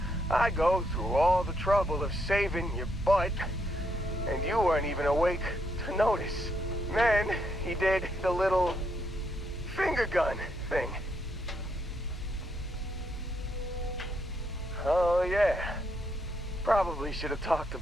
I go through all the trouble of saving your butt, and you weren't even awake to notice. Then he did the little finger gun thing. Oh yeah, probably should have talked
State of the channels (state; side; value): normal; both; correlation 0.76